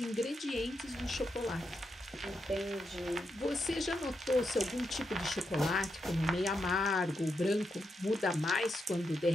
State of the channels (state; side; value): normal; both; correlation 0.83